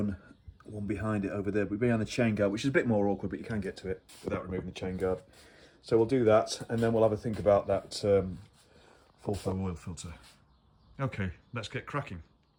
1 behind it over there, but behind the chain guard, which is a bit more awkward, but you can get to it without removing the chain guard. So we'll do that, and then we'll have a think about that full flow oil filter. Okay, let's get cracking.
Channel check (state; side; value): identical; both; correlation 1.00